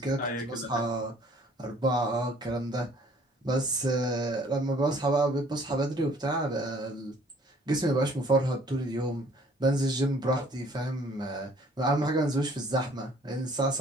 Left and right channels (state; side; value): normal; both; correlation 0.57